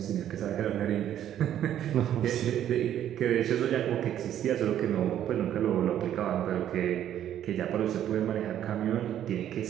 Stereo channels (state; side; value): quieter; left; 10.9 dB